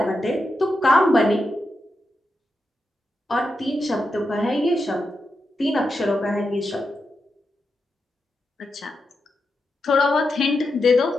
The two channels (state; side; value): normal; both; correlation 0.87